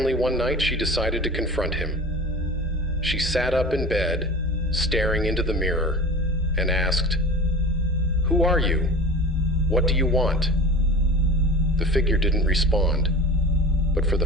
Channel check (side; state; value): both; normal; correlation 0.35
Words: one night, she decided to confront him. She sat up in bed, staring into the mirror, and asked, "Who are you? What do you want?" The figure didn't respond, but for the